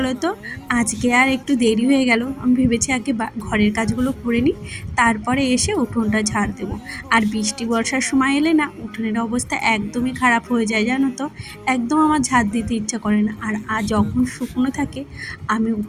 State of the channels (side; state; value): both; identical; correlation 1.00